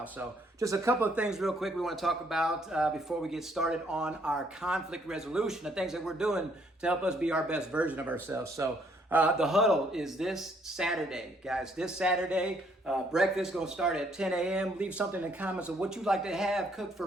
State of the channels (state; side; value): normal; both; correlation 0.67